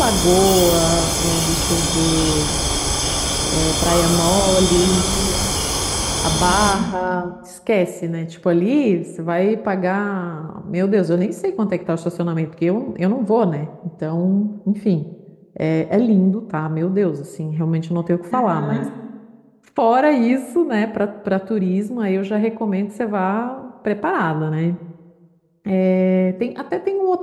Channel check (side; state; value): both; identical; correlation 1.00